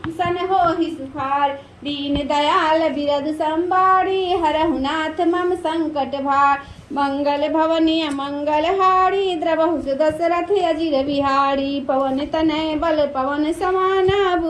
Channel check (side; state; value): both; identical; correlation 1.00